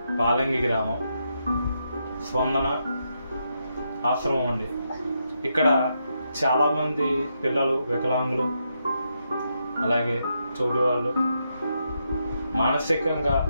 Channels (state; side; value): inverted; both; correlation -0.82